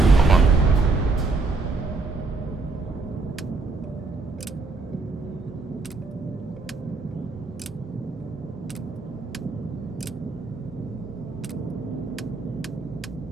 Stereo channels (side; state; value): left; quieter; 3.8 dB